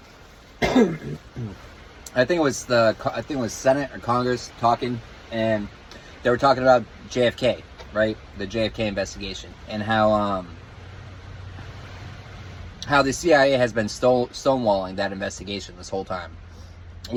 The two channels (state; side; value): identical; both; correlation 1.00